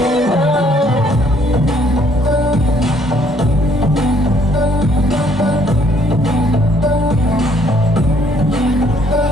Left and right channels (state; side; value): normal; both; correlation 0.64